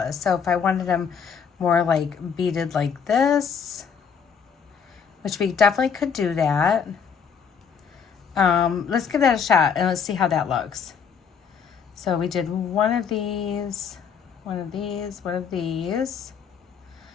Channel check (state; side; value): quieter; right; 6.7 dB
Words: So if I wanted them more like beaded like this, which we definitely could do that. Let's give that a shot and let's see how that looks. So we did one of these, one of these, one of these,